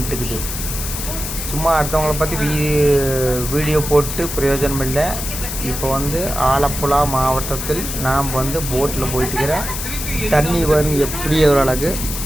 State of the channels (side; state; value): left; noise; hiss, 6 dB below the sound